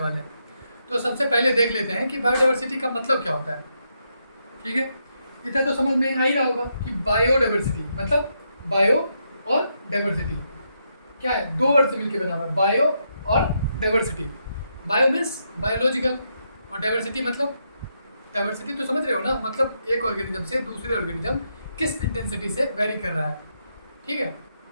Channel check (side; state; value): both; inverted; correlation -0.80